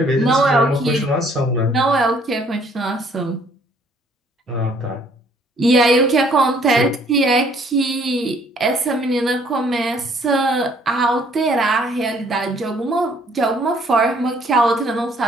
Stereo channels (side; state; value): both; normal; correlation 0.62